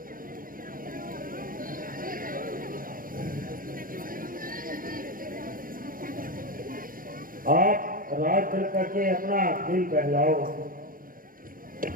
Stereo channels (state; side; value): late; left; 0.41 ms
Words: आप रात चल करके अपना दिल बहलाओ।